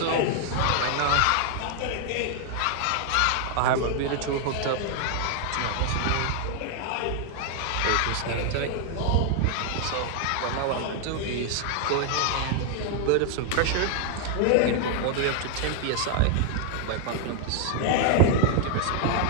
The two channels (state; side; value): different; both; correlation 0.00